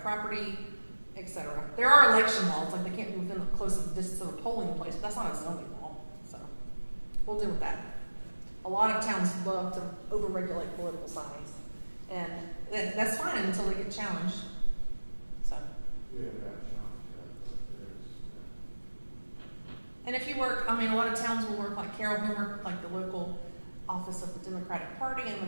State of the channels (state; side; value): inverted; both; correlation -1.00